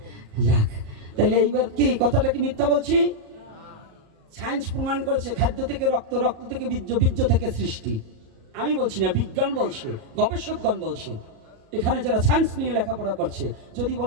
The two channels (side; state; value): left; late; 37 ms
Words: যাক, তাইলে এইবার কি কথাটা কি মিথ্যা বলছি? সায়েন্স প্রমাণ করেছে খাদ্য থেকে রক্ত, রক্ত থেকে বীর্য, বীর্য থেকে সৃষ্টি। আমি বলছি না, বিজ্ঞান বলছে, গবেষকগণ বলছে। এখানে যারা সায়েন্স নিয়ে লেখাপড়া করছে যদি